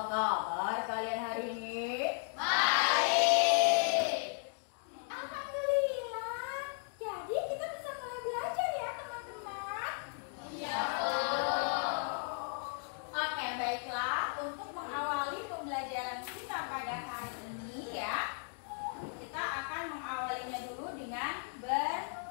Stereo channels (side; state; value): right; silent; 54 dB below the other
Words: kabar kalian hari ini? Baik. Alhamdulillah. Jadi kita bisa mulai belajar ya teman-teman. Iya. Oke, baiklah. Untuk mengawali pembelajaran kita pada hari ini ya, kita akan mengawalinya dulu dengan